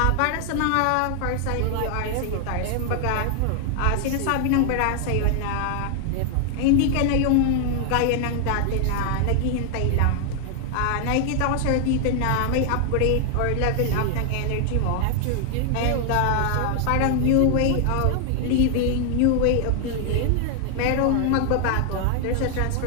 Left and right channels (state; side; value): different; both; correlation 0.00